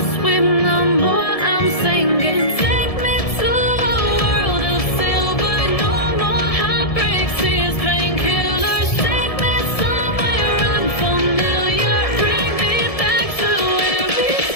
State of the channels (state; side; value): late; right; 1.7 ms